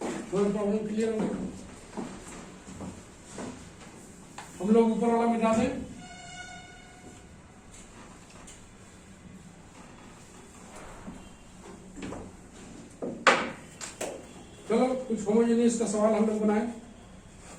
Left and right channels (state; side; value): identical; both; correlation 1.00